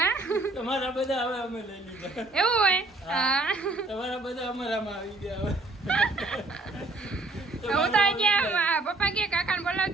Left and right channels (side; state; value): left; quieter; 3.1 dB